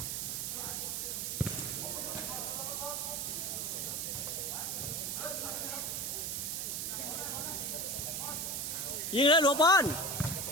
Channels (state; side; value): noise; right; hiss, 1 dB below the sound